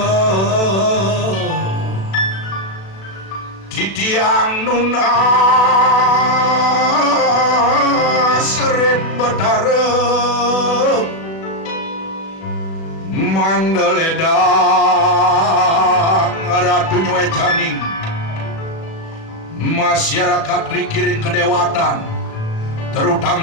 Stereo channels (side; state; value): right; late; 36 ms